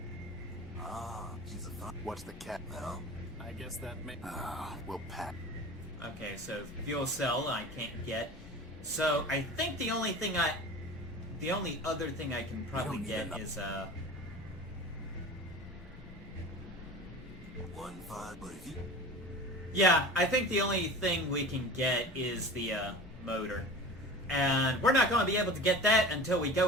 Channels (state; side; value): normal; both; correlation 0.36